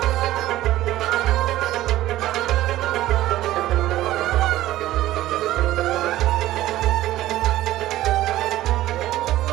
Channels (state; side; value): quieter; left; 15.1 dB